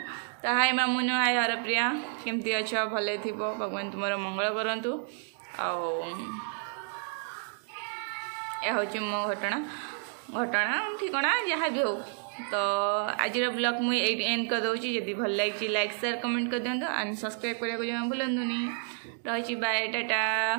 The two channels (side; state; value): left; silent; 58 dB below the other